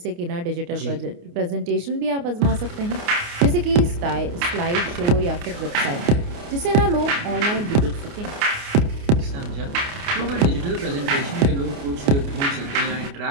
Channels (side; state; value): left; late; 29 ms